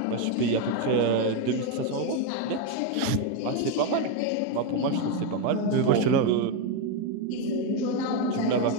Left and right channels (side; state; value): both; different; correlation 0.03